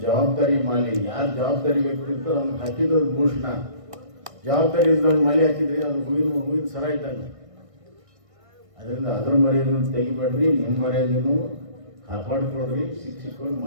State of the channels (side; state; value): left; late; 1.6 ms